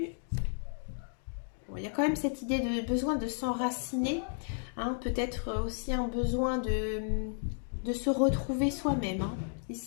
Bon, il y a quand même cette idée de besoin de s'enraciner, hein, peut-être aussi un besoin de se retrouver soi-même, hein.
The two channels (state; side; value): silent; right; digital silence